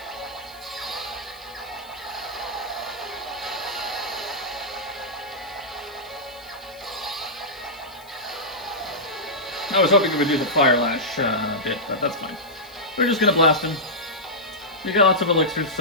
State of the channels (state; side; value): noise; left; hiss, 24 dB below the sound